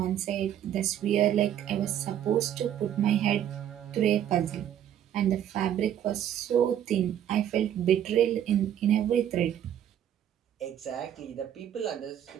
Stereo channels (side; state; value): left; quieter; 10.4 dB